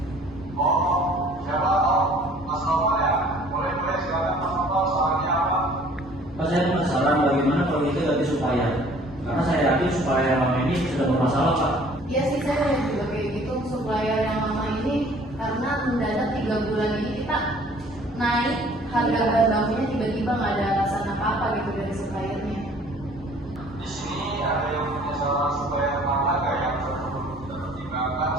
Oh, siapa? Oh, Mas Novel ya? Boleh silakan Mas Novel, sarannya apa? Pak, saya punya saran bagaimana kalau kita ganti supplier. Karena saya yakin supplier yang lama ini sudah bermasalah, Pak. Iya sih, saya lihat juga kayak gitu. Supplier yang lama ini karena mendadak 3 bulan ini kita naik harga bahan bakunya, tiba-tiba nggak ada alasan apa-apa gitu dari suppliernya. Di sini ada yang punya saran supaya harga yang perlu kita pertimbangkan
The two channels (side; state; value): both; normal; correlation 0.54